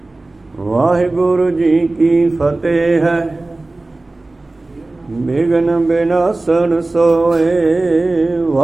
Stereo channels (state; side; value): quieter; left; 3.0 dB